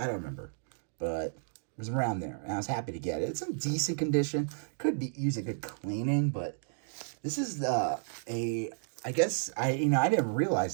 don't remember, but it was around there, and I was happy to get it. It's in decent condition. Could be use a good cleaning, but this is I guess I didn't realize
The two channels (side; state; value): left; silent; digital silence